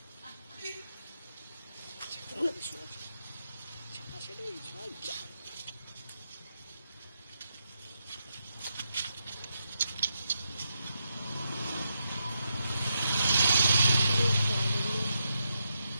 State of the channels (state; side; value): inverted; both; correlation -0.84